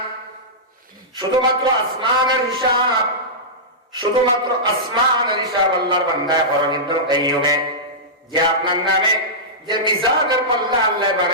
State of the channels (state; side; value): normal; both; correlation -0.14